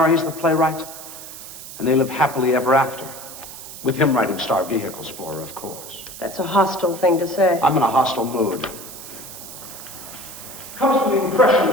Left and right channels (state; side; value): noise; right; hiss, 13 dB below the sound